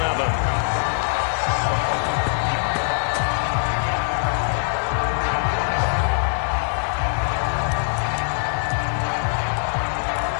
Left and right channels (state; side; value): silent; right; 64 dB below the other